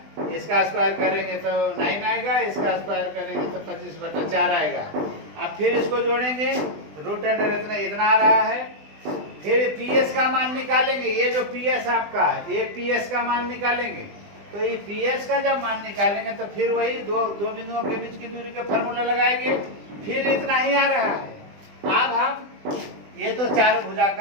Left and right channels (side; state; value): left; late; 20 ms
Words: इसका स्क्वायर करेंगे तो 9 आएगा, इसका स्क्वायर करेंगे तो 25/4 आएगा। अब फिर इसको जोड़ेंगे, √, इतना आ रहा है। फिर पीएस का मान निकालेंगे। ये जो पीएस आपका है ये पीएस का मान निकालेंगे। तो ये पीएस का जब मान निकालेंगे तो फिर वही दो बिंदुओं के बीच की दूरी के फॉर्मूला लगाएंगे। फिर इतना ही आ रहा है। अब हम ये तो चारों भुजा